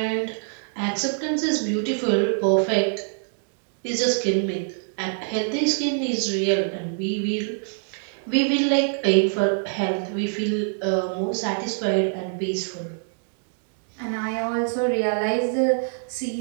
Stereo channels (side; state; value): left; silent; digital silence